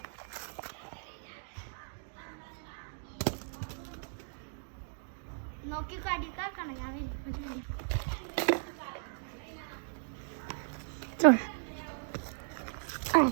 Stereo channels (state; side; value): silent; left; digital silence